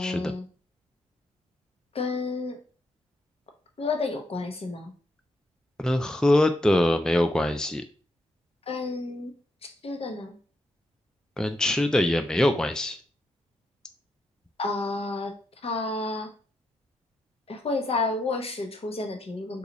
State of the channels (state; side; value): normal; both; correlation 0.80